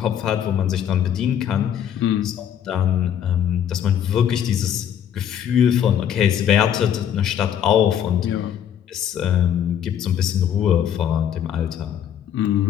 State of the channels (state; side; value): quieter; right; 9.4 dB